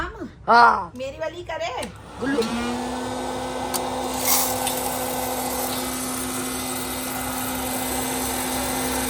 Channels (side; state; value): both; identical; correlation 1.00